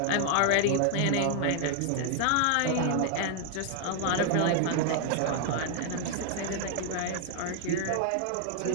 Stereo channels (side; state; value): both; different; correlation 0.00